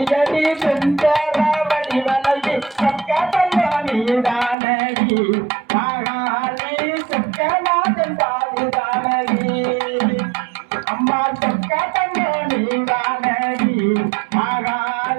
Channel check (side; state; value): left; drops out; at 4.5 s